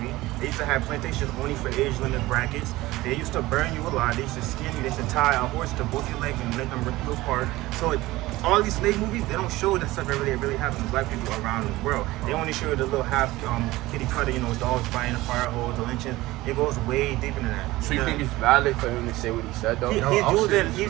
They used to have plantations only for age limit brackets. They used to burn you alive. They used to skin you. They used to tie a horse to both your legs and let them rip you apart. So all these slave movies, they don't show that stuff that really happens to black people around the world. They only show the little half kitty cutter, dogs biting the fire hose, the lynching. It goes way deeper than that. So you think it's valid for him to say what he said though? He's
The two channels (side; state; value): left; quieter; 18.5 dB